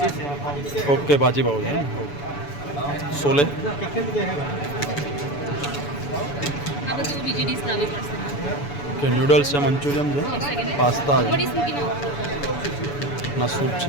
ઓકે ભાજી પાવ છે સોલે કે નૂડલ્સ છે મંચુરિયન છે પાસ્તા છે ના સૂપ છે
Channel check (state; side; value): late; right; 7.0 ms